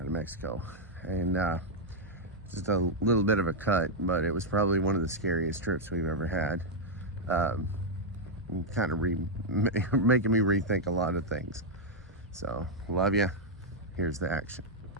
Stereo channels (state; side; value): normal; both; correlation -0.03